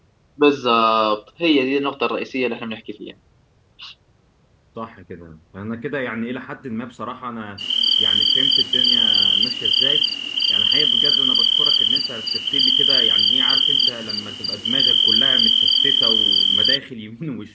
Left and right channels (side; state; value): both; identical; correlation 1.00